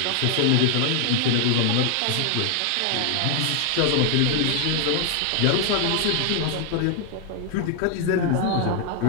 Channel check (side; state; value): both; different; correlation 0.00